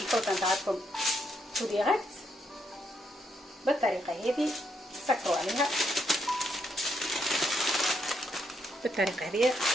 نتاعكم تو ديريكت. بالطريقه هذه سكروا عليها بالطريقه هذه.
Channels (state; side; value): normal; both; correlation 0.77